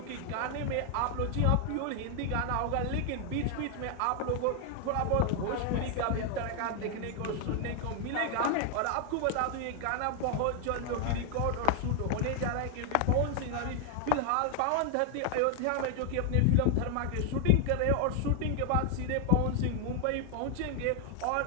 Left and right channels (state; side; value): different; both; correlation 0.00